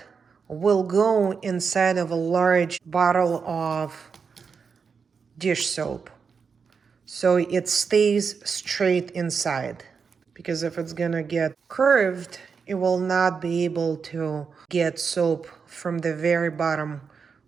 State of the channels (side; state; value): left; quieter; 5.7 dB